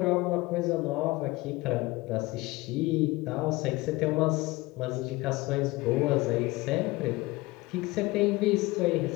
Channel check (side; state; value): right; quieter; 21.1 dB